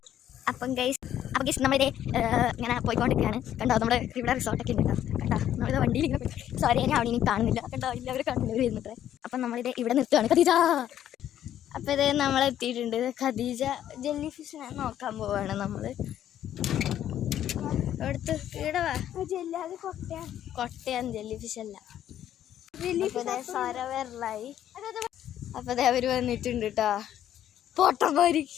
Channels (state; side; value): quieter; right; 11.1 dB